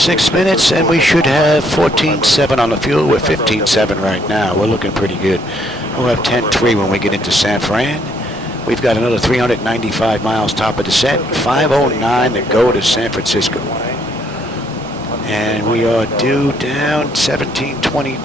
minutes, and we should have 14.7 on the fuel. We're 15.7 right now. We're looking pretty good. We'll have 10.3 when we get into San Fran. We've got another 395 miles top of descent, 5:09 to go to San Francisco. And we are due down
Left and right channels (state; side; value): normal; both; correlation 0.69